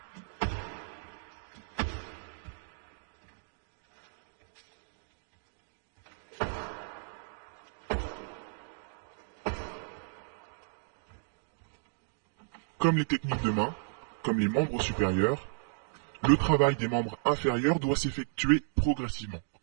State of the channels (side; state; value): left; silent; digital silence